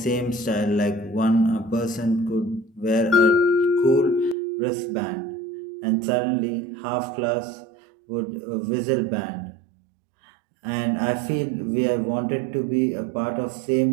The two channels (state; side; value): drops out; left; at 4.4 s